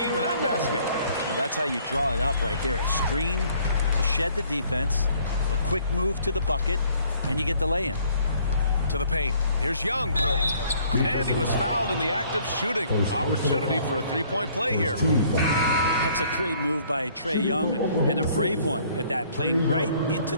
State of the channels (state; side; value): inverted; both; correlation -0.60